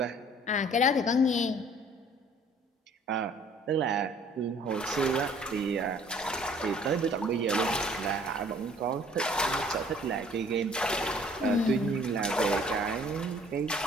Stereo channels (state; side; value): normal; both; correlation 0.55